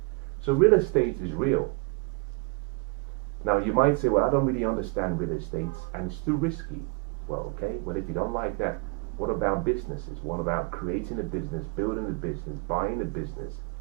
So real estate is real. Now you might say, well, I don't really understand real estate and it's too risky. Well, okay, well, if you don't like that, what about businesses? What about creating a business, building a business, buying a business,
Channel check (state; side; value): quieter; left; 29.9 dB